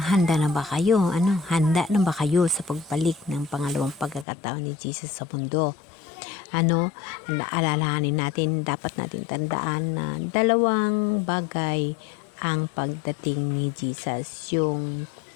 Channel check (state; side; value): drops out; right; at 4.2 s